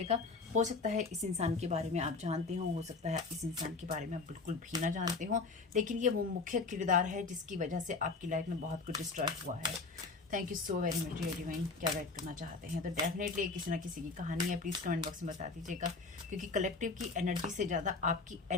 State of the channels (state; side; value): quieter; right; 4.0 dB